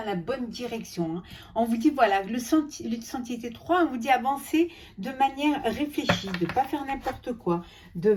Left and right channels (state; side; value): identical; both; correlation 1.00